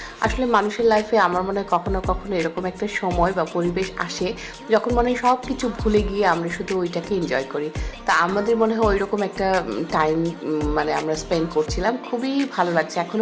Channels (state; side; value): identical; both; correlation 1.00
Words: আসলে মানুষের লাইফে আমার মনে হয় কখনো কখনো এরকম একটা সময় বা পরিবেশ আসে যখন মনে হয় সব কিছু ভুলে গিয়ে আমরা শুধু ওইটাকে এনজয় করি। তা আমাদের মনে হয় ওই রকম একটা টাইম মানে আমরা স্পেন্ড করছিলাম, খুবই ভালো লাগছে,